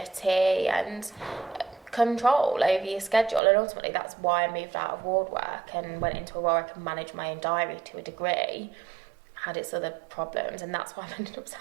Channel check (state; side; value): drops out; left; at 3.4 s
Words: and control over your schedule, and ultimately that's why I moved out of ward work and went into a role where I can manage my own diary to a degree. Had its other problems, and that's why I ended up